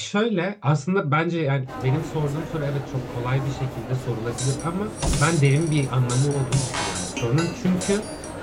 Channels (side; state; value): both; identical; correlation 1.00